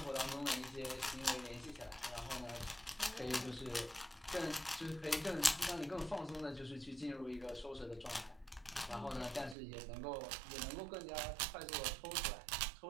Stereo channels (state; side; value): drops out; left; at 9.6 s